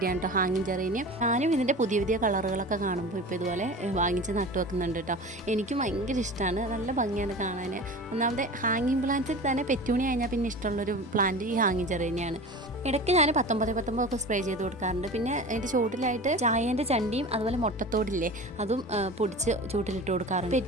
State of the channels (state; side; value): normal; both; correlation 0.34